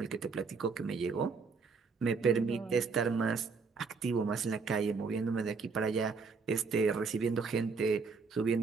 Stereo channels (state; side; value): quieter; left; 4.8 dB